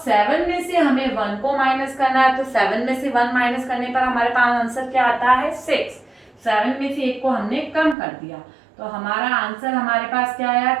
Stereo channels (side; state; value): left; drops out; at 8.0 s